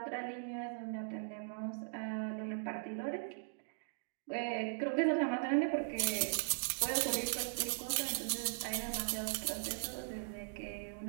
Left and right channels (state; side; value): silent; left; digital silence